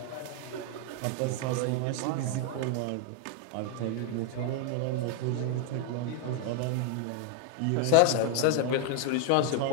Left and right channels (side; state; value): both; different; correlation 0.00